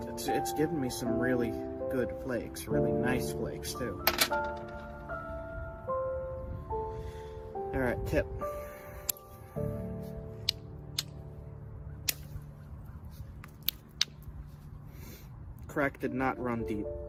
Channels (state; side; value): identical; both; correlation 1.00